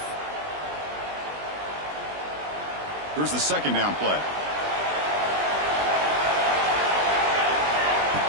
Here's the 2nd down play.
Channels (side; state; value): left; late; 20 ms